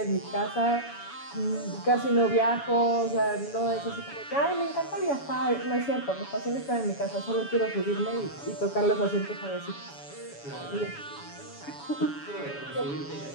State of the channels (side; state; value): right; late; 7.1 ms